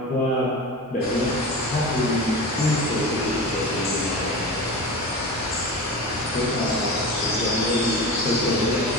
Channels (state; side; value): normal; both; correlation 0.29